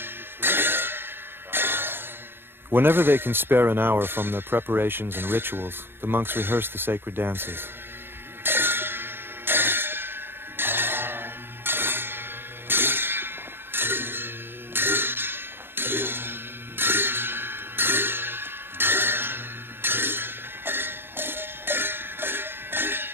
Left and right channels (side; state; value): left; late; 0.10 ms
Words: Whenever they can spare an hour from their preparations and rituals, the monks rehearse the sacred dances.